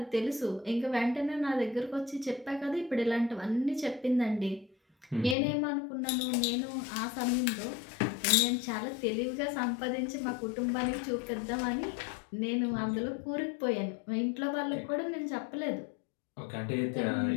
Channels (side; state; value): right; drops out; at 5.4 s